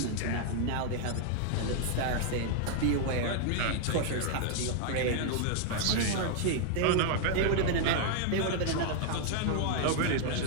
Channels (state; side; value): different; both; correlation 0.00